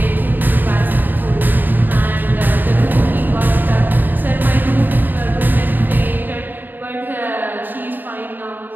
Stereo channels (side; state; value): left; late; 0.090 ms